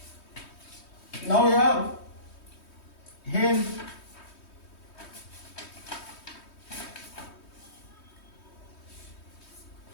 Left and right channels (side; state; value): right; late; 3.2 ms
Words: Now here, hence